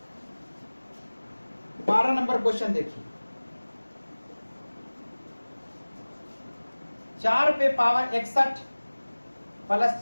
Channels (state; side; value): inverted; both; correlation -1.00